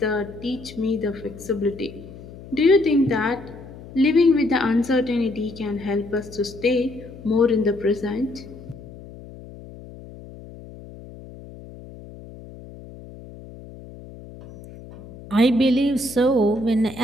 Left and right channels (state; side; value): noise; left; hum, 17 dB below the sound